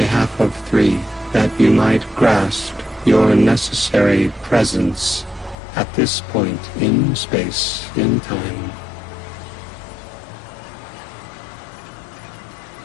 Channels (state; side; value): drops out; right; at 5.6 s